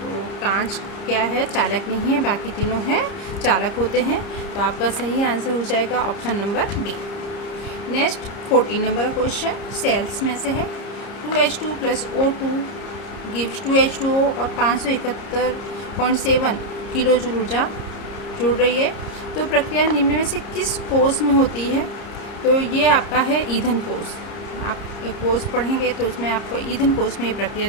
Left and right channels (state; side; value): late; right; 30 ms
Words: कांच क्या है, चालक नहीं है, बाकी तीनों हैं चालक होते हैं। तो आपका सही आंसर हो जाएगा option number B. Next 14 number question cells में से है, 2H2 + O2 गिव्स 2H2O और 571.7 किलो जूल ऊर्जा जुड़ रही है। तो प्रक्रिया निम्न में से किस कोष में होती है। तो ये आपका है ईंधन कोष। आप एक कोष पढ़ेंगे तो उसमें आपको ईंधन कोष में ये प्रक्रिया